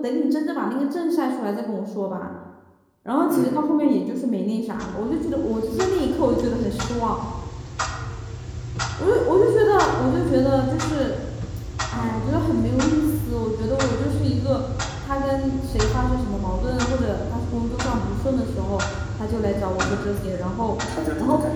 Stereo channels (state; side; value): identical; both; correlation 1.00